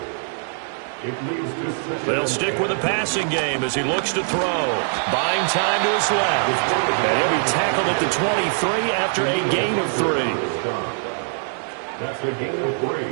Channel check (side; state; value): left; silent; 62 dB below the other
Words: They'll stick with the passing game as he looks to throw. Buying time to his left. And he'll be tackled at the 23 after a gain of 3. That's a gain of 3.